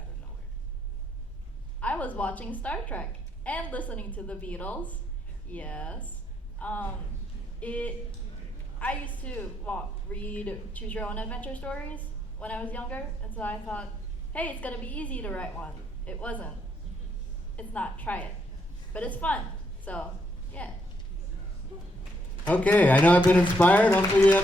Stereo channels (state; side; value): normal; both; correlation 0.75